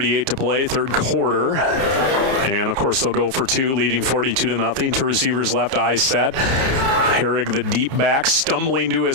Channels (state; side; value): late; left; 30 ms